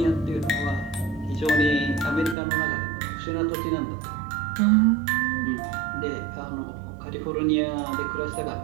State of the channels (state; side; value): drops out; left; at 2.4 s